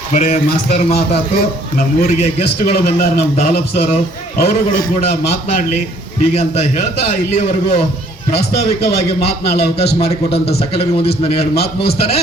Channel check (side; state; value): both; normal; correlation 0.60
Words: ಬರೇ ಮಾಸ್ತರ್ ಮಾತಾತು, ನಮ್ಮೂರಿಗೆ ಗೆಸ್ಟ್ಗಳು ಬಂದಾರ, ನಮ್ಮ ದಾಲಪ್ ಸರ್, ಅವರುಗಳು ಕೂಡ ಮಾತನಾಡ್ಲಿ ಹೀಗಂತ ಹೇಳ್ತಾ ಇಲ್ಲಿಯವರೆಗೂ ಪ್ರಾಸ್ತಾವಿಕವಾಗಿ ಮಾತನಾಡಲು ಅವಕಾಶ ಮಾಡಿಕೊಟ್ಟಂತ ಸಕಲರಿಗೆ ಒಂದಿಷ್ಟು ನಾನು ಎರಡು ಮಾತು ಮುಗಿಸ್ತಾನೆ.